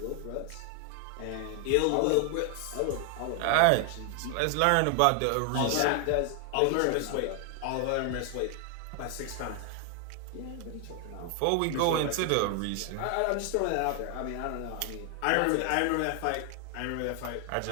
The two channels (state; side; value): different; both; correlation 0.00